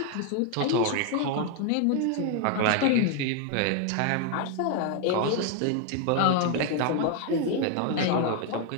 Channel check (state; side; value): different; both; correlation 0.00